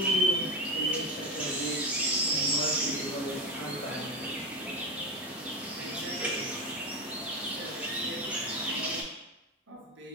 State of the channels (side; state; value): both; normal; correlation 0.18